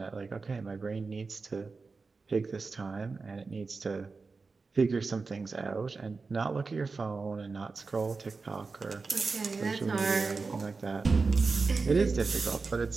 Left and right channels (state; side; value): quieter; left; 4.3 dB